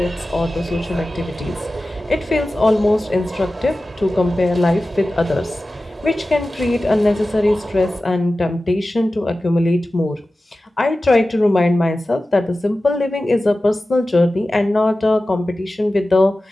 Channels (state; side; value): normal; both; correlation 0.95